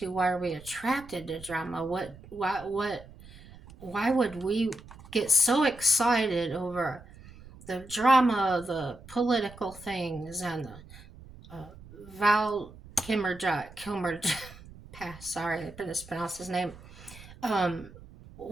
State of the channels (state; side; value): noise; right; rumble, 19 dB below the sound